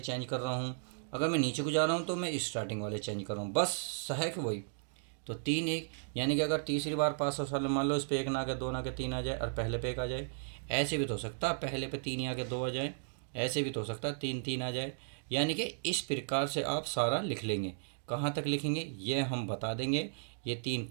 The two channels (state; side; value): silent; left; digital silence